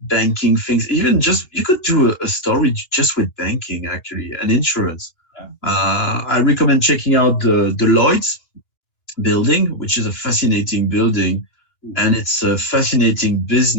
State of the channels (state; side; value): late; right; 2.9 ms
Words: banking things. Even just you could do a story just with banking, actually, and insurance. I recommend checking out the Lloyd's building, which is a fascinating building, and it's a fascinating